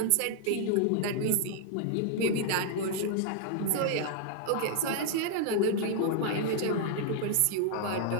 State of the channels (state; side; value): different; both; correlation -0.01